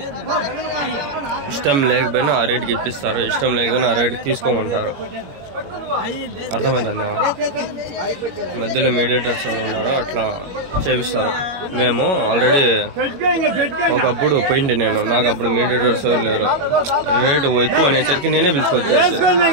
ఇష్టం లేకపోయినా ఆ రేటుకి ఇప్పిస్తారు, ఇష్టం లేకపోయినా ఆ రేటుకి తీసుకోమంటారు. అర్థమైందన్న. మధ్యలో మీడియేటర్స్ ఎవరు ఉన్నారో అట్లా చేపిస్తారు. మేము ఆల్రెడీ ఒకప్పుడు పోయింది నేను, నాకు అప్పుడు మీడియేటర్స్ ఎవరు లేరు. రేటు ఎక్కువ అనేసరికి నేనే పిలుచుకొచ్చేసి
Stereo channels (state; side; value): late; left; 21 ms